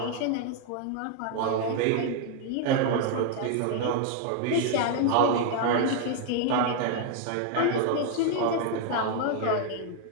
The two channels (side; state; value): both; different; correlation 0.00